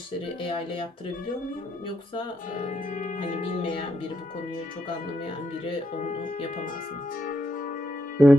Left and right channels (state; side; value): normal; both; correlation 0.80